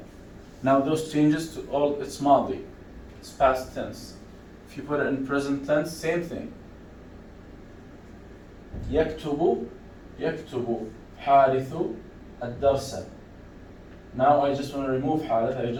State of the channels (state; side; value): identical; both; correlation 1.00